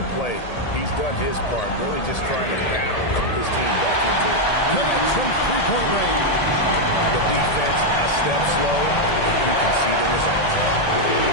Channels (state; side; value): late; right; 1.8 ms